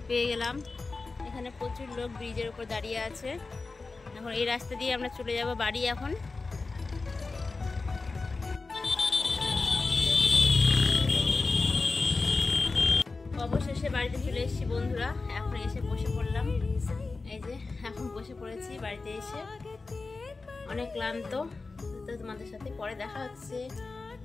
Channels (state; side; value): quieter; right; 3.9 dB